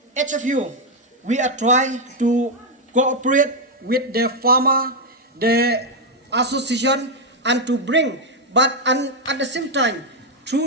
HFU, we are trying to cooperate with the farmer, the association, and to bring, and at the same time,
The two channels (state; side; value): normal; both; correlation 0.02